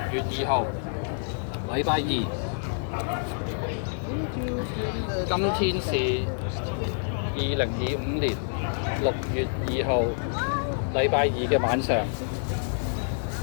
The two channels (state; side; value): silent; right; digital silence